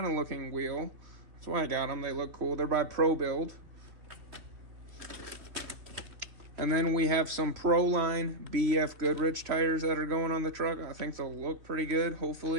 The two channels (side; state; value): left; late; 3.4 ms